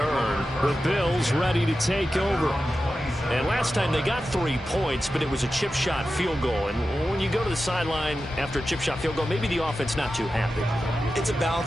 The Bills ready to take over. And last time they got 3 points, but it was a chip shot field goal. And when you go to the sideline after a chip shot field goal, maybe the offense not too happy. It's a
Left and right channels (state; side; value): normal; both; correlation 0.92